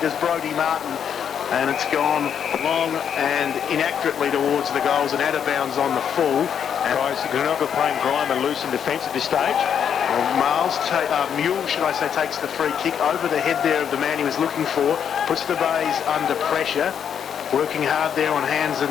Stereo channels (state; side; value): quieter; right; 8.2 dB